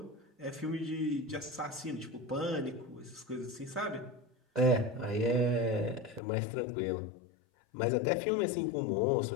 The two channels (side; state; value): right; drops out; at 6.2 s